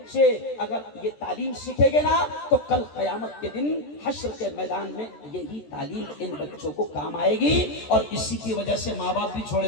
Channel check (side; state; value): right; late; 14 ms